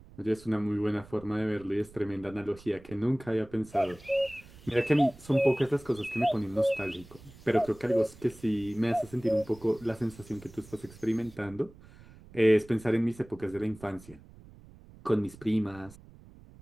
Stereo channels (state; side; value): noise; right; rumble, 21 dB below the sound